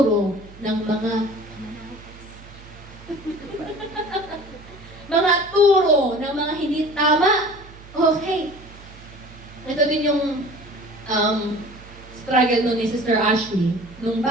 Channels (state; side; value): noise; right; hum, 19 dB below the sound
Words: ng mga mga turo ng mga hindi tama. Okay. Ito din yung struggle nun ni Sister Ashley. Nung